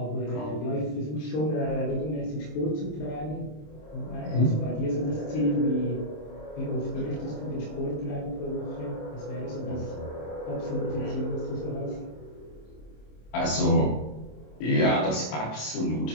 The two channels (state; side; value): late; right; 26 ms